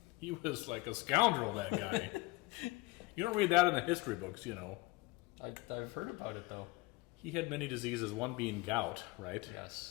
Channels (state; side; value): quieter; right; 22.4 dB